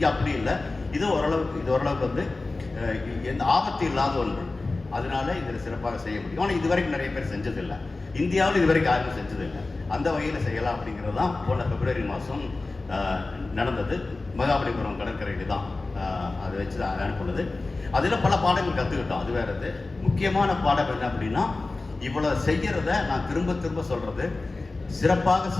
அப்படி இல்லை. இது ஓரளவுக்கு வந்து எந்த ஆபத்து இல்லாத ஒன்று. அதனால இதில் சிறப்பாக செய்ய முடியும். ஆனால் இதுவரைக்கும் நிறைய பேர் செஞ்சதில்லை. இந்தியாவில் இதுவரைக்கும் யாரும் செஞ்சதில்லை. அந்த வகையில் செய்யலாம் அப்படிங்கிறது தான் போன பிப்ரவரி மாதம் நடந்தது. மகாபலிபுரம் கடற்கரையில் தான் அதை வச்சு அனுப்புனது. அதில் பல பாடங்கள் கற்றுக்கிட்டோம். அது வேறது முக்கியமான பாடம் என்ன அப்படின்னா, இவ்வளோ செய்கிறத நான் திரும்ப சொல்கிறது, சிறப்பாக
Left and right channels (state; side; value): quieter; right; 3.4 dB